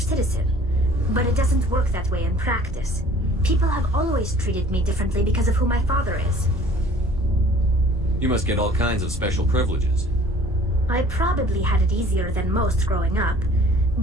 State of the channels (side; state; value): both; normal; correlation 0.51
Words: but it doesn't work that way in practice. People have always treated me differently because of who my father is. You must get all kinds of special privileges. I probably had it easier than most growing up,